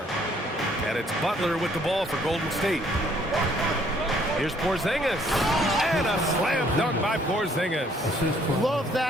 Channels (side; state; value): both; normal; correlation 0.63